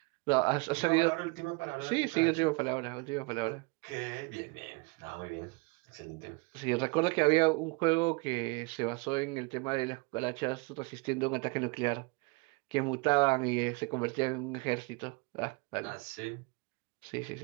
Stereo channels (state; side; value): quieter; left; 28.5 dB